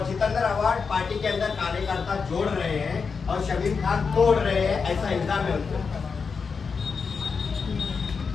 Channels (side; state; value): right; quieter; 5.3 dB